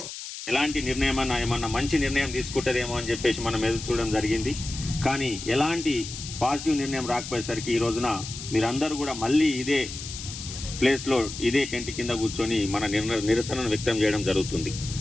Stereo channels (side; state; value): left; noise; hiss, 10 dB below the sound